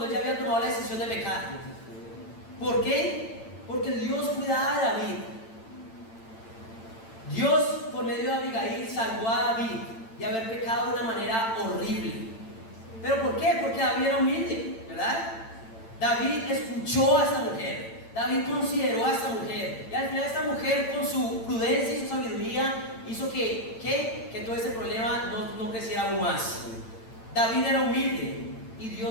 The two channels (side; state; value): right; late; 8.9 ms